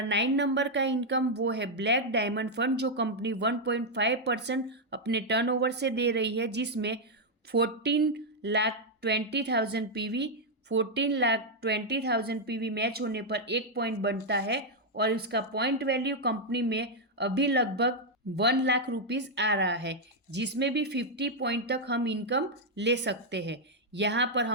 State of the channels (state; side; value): normal; both; correlation -0.01